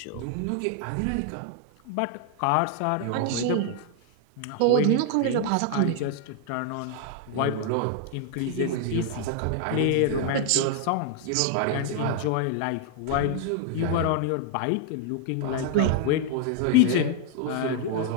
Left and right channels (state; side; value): different; both; correlation 0.00